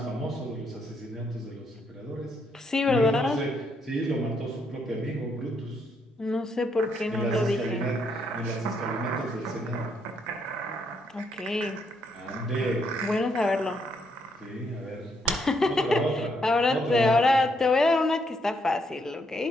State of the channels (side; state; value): both; normal; correlation 0.75